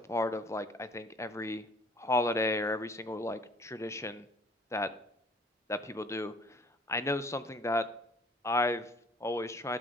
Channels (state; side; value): normal; both; correlation 0.54